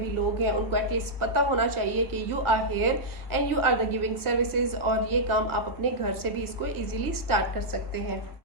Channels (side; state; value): left; late; 1.6 ms